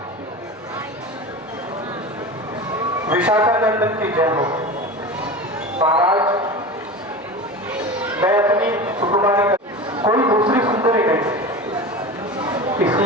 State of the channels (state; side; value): normal; both; correlation 0.30